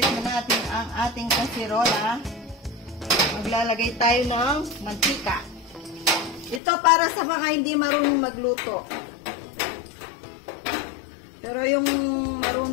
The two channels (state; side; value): drops out; right; at 6.6 s